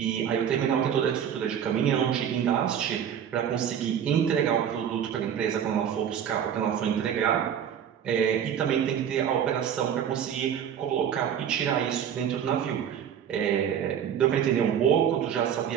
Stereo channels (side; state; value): left; quieter; 8.9 dB